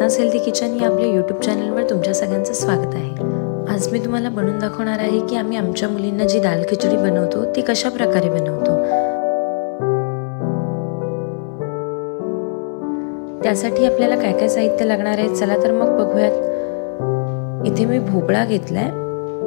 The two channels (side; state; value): right; silent; digital silence